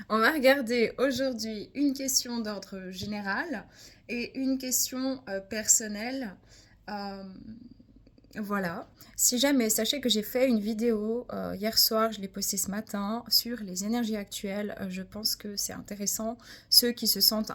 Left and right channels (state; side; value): identical; both; correlation 1.00